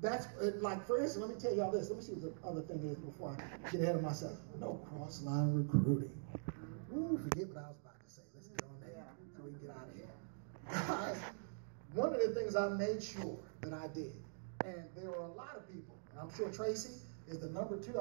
That's like, for instance, let me tell y'all this. Let me see what the other thing is before I get ahead of myself. No cross-line recruiting. Ooh, forget what I was about to say. Let's get on there so we can get out of here. Guys, one of the things I made sure that I did, and there were a lot of people, and I'm sure Tracy is the number 2.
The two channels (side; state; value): left; silent; digital silence